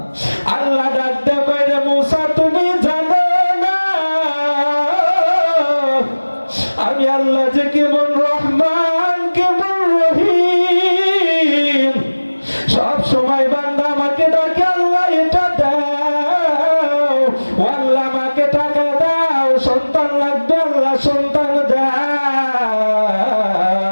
আল্লাহ ডাক দিয়ে কয়, রে মুসা, তুমি জানো না আমি আল্লাহ যে কেমন রহমান, কেমন রহিম, সব সময় বান্দা আমাকে ডাকে, আল্লাহ এটা দাও, আল্লাহ আমাকে টাকা দাও, সন্তান লাগবে, আল্লাহ সন্তান দাও,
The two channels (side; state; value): both; inverted; correlation -1.00